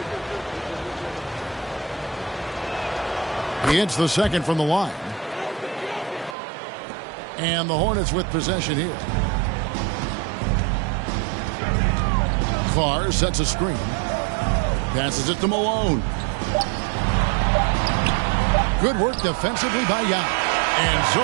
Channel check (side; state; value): left; drops out; at 6.4 s